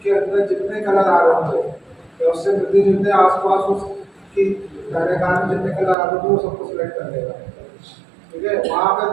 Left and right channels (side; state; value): left; drops out; at 6.0 s